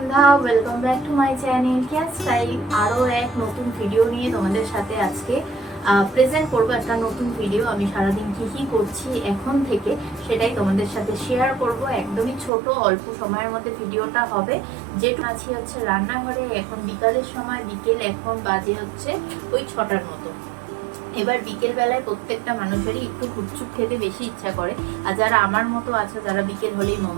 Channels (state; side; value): drops out; left; at 12.5 s